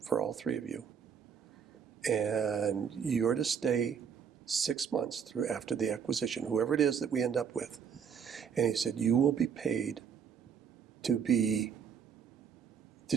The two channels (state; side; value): quieter; left; 7.2 dB